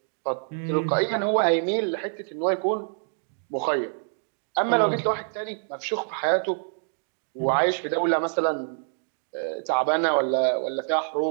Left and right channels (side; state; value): left; silent; digital silence